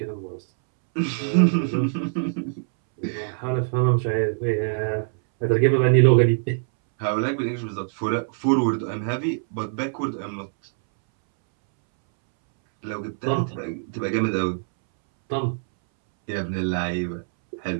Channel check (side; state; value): left; silent; 63 dB below the other